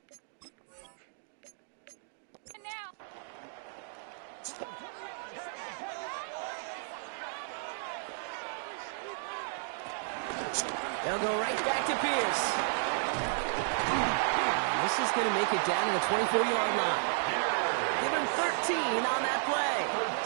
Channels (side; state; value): left; silent; digital silence